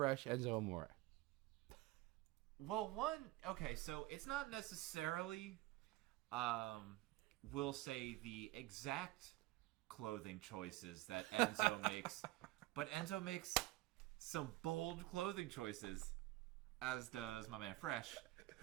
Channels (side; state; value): left; quieter; 17.9 dB